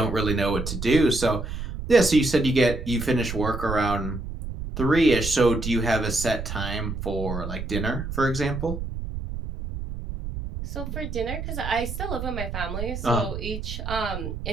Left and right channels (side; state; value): right; noise; rumble, 6 dB below the sound